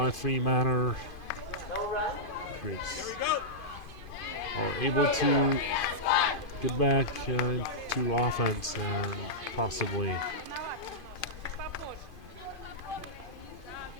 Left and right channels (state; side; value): late; right; 2.5 ms